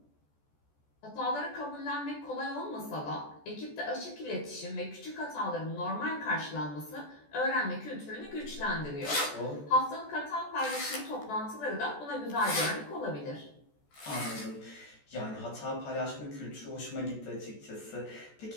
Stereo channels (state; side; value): late; right; 14 ms